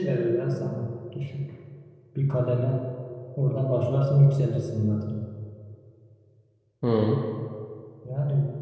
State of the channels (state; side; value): identical; both; correlation 1.00